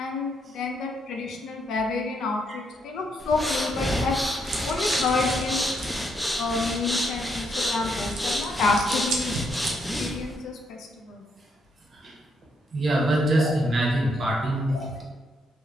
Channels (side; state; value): both; normal; correlation 0.75